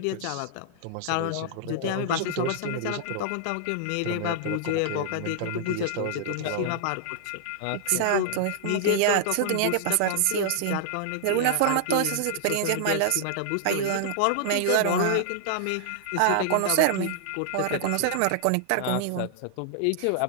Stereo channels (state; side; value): different; both; correlation -0.01